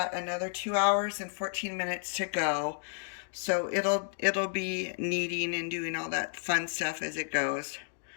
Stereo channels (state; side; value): silent; right; digital silence